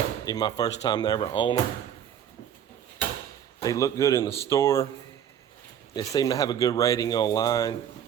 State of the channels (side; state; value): left; quieter; 9.4 dB